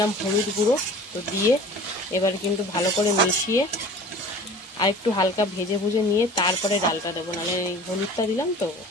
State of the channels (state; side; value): normal; both; correlation 0.43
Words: হলুদ গুঁড়ো। তো দিয়ে এবার কিন্তু ভালো করে মিশিয়ে আর একটু হালকা ভেজে নিয়ে তারপরে ডালটা দেবো, নাহলে হলুদটা দিলাম তো